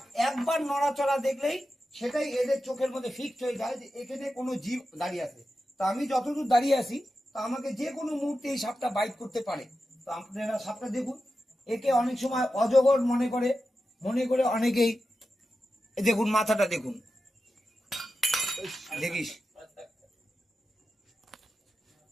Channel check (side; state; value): both; normal; correlation 0.91